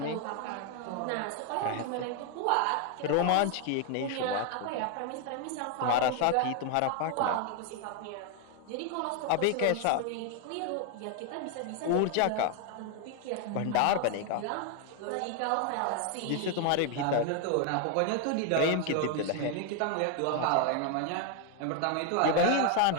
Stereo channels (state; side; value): different; both; correlation 0.01